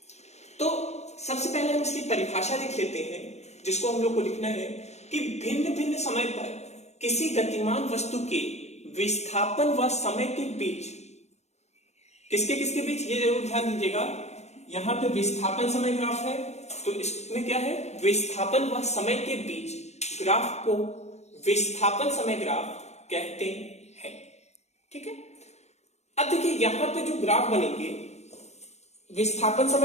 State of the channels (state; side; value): late; right; 0.32 ms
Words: तो सबसे पहले हम इसकी परिभाषा लिख लेते हैं, जिसको हम लोग को लिखना है कि भिन्न भिन्न समय पर किसी गतिमान वस्तु के विस्थापन व समय के बीच, किसके किसके बीच, ये जरूर ध्यान दीजिएगा। यहां पे विस्थापन समय ग्राफ है, तो इसमें क्या है? विस्थापन व समय के बीच ग्राफ को विस्थापन समय ग्राफ कहते हैं। ठीक है, अब देखिए यहां पे जो ग्राफ बनेंगे, विस्थापन